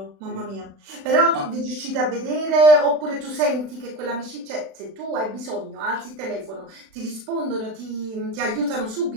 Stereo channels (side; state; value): left; late; 36 ms